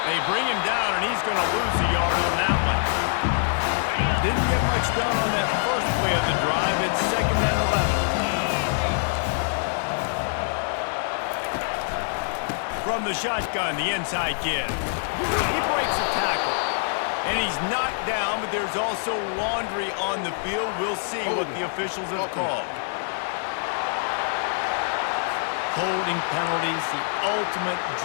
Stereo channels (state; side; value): silent; right; 62 dB below the other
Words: They bring him down, and he's going to lose a yard on that one. Didn't get much done on that first play of the drive. It's 2nd and 11. From the shotgun, the inside give. He breaks a tackle. And he's knocked down, but there's also laundry on the field. We'll see what the officials have called. Holding penalties, the ultimate